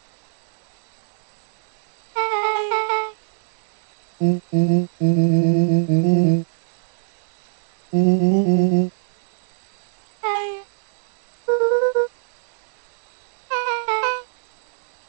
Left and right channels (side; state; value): left; silent; 62 dB below the other